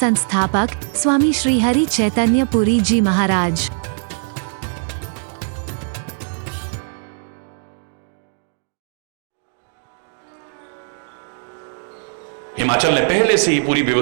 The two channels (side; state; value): left; silent; digital silence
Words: स्वामी श्री हरि चैतन्य पुरी जी महाराज। हिमाचल ने पहले से ही पूरी